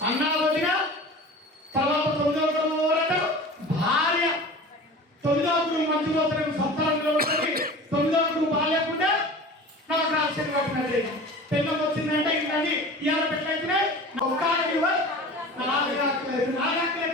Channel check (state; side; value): normal; both; correlation 0.38